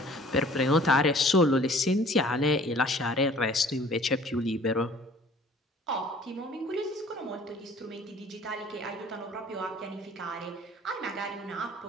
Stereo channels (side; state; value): both; normal; correlation 0.51